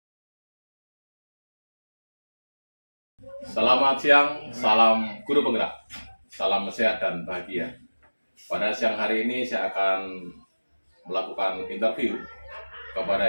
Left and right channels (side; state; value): both; inverted; correlation -1.00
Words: Selamat siang, salam guru penggerak, salam sehat dan bahagia. Pada siang hari ini saya akan melakukan interview